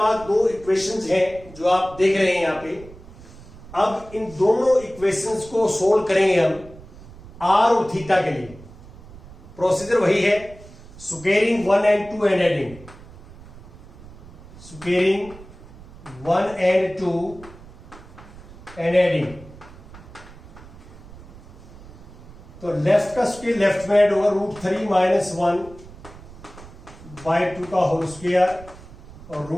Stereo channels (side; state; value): right; noise; rumble, 18 dB below the sound